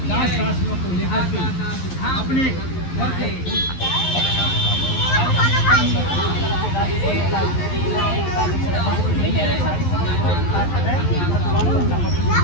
दास दासियों को लेकर के अपने घर को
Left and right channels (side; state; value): right; late; 11 ms